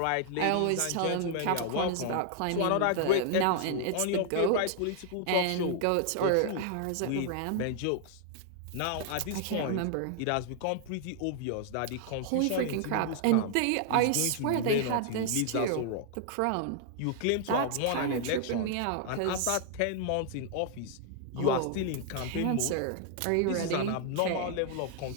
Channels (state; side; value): different; both; correlation -0.01